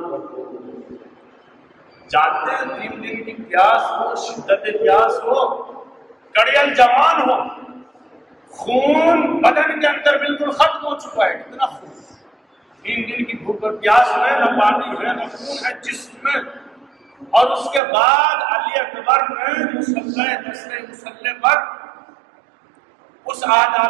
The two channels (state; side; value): drops out; left; at 17.8 s